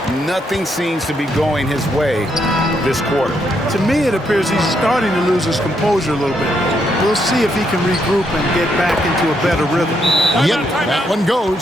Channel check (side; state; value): both; normal; correlation 0.77